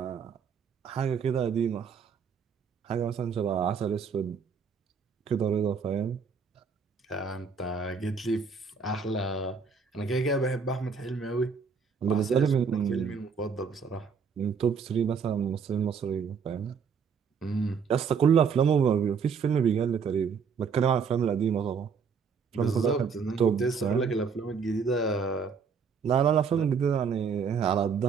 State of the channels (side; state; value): left; quieter; 6.0 dB